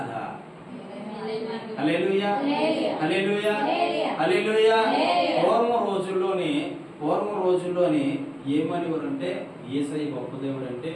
హల్లెలూయా హల్లెలూయా హల్లెలూయా. పూర్వం రోజుల్లోనే ఏమనేవారంటే, యేసయ్య గొప్ప దేవుడు అంటే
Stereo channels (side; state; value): both; identical; correlation 1.00